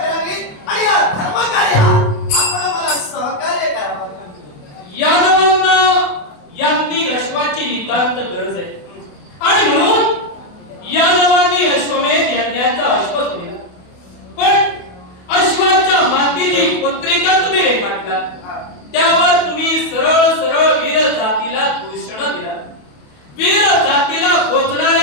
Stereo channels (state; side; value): late; right; 28 ms